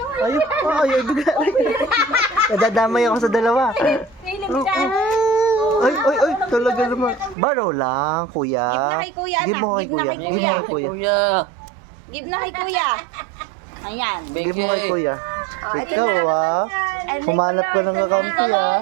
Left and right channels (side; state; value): left; drops out; at 7.4 s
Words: Ayaw, bigay. Nadadamay ako sa dalawa. Ay, talaga naman. Baro lang, kuya. Give na kay kuya, Give mo kay kuya. anak. Give mo kay kuya. Give na kay kuya. Ayan. Give mo kay kuya. Ikaw, humanap ka ng kakampi,